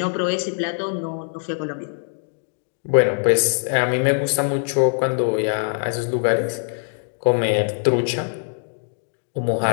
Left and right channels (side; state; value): right; silent; digital silence